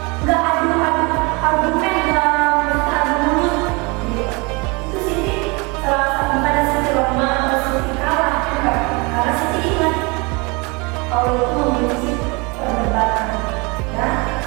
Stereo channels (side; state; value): left; quieter; 28.3 dB